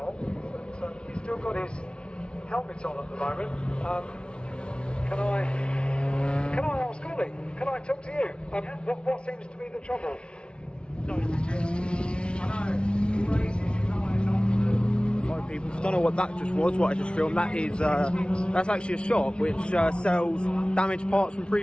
But he's still got his helmet on at the moment. Can I ask Ollie? Can I talk to you? What seems to be the trouble? Sorry people, if you don't know what that just was, what I just filmed, that's actually a shop which sells damaged parts from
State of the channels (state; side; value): late; right; 0.057 ms